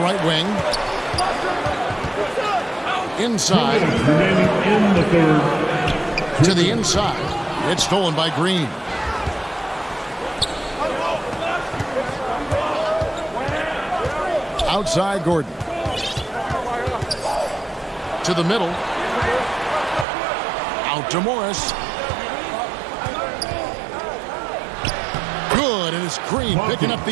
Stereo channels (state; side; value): drops out; left; at 20.1 s